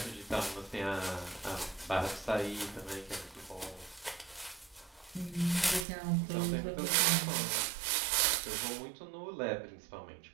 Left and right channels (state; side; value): drops out; left; at 5.9 s